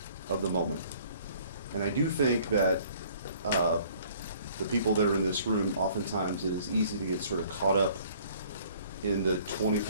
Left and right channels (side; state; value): both; inverted; correlation -0.56